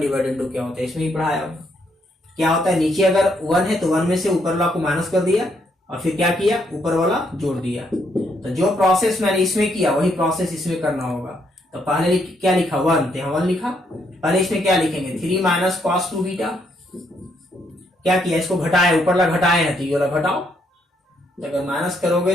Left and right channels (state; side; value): normal; both; correlation 0.73